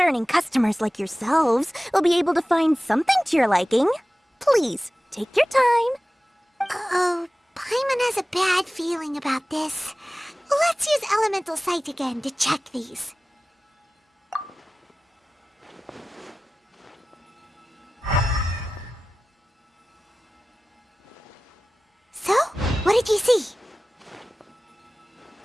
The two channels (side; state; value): both; normal; correlation 0.96